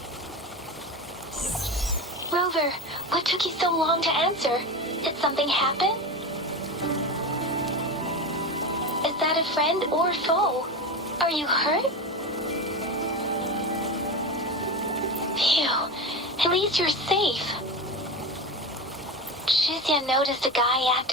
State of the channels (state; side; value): normal; both; correlation 0.24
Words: Rover, what took you so long to answer? Did something happen? Is that a friend or foe? Are you hurt? Phew, at least you're safe. Shizia noticed a guy